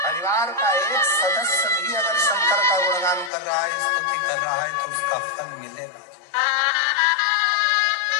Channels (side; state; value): right; drops out; at 3.3 s